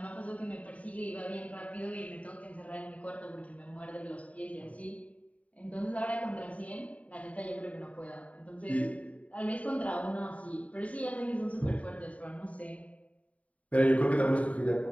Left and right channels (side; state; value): right; late; 0.067 ms